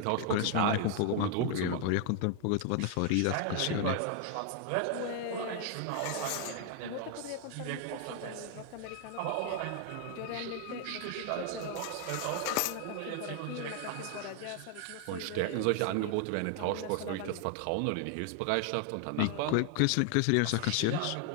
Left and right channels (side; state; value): both; different; correlation 0.00